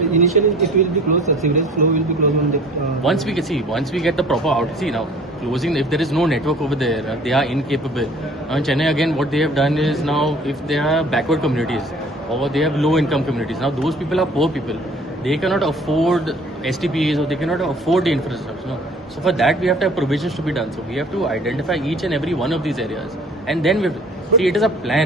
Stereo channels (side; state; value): both; normal; correlation 0.50